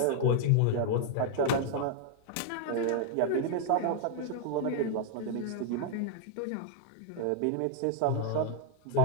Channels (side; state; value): both; different; correlation 0.00